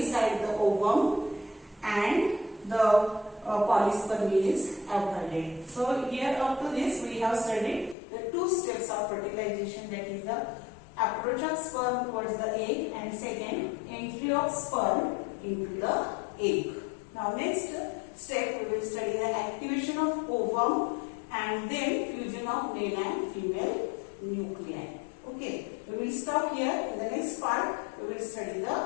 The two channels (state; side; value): drops out; right; at 8.0 s